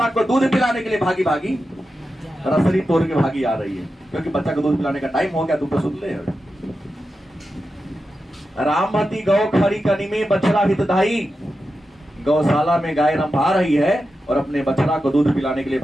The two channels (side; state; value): both; normal; correlation 0.90